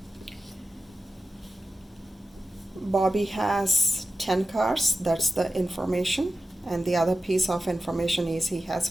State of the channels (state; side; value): normal; both; correlation 0.93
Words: Bobby has 10 cars, that's the information, and the other piece of information is he has